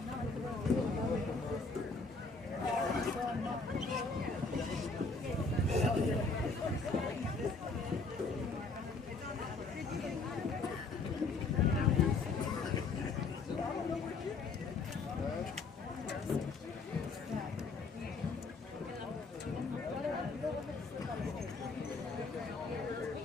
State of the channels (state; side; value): quieter; right; 4.0 dB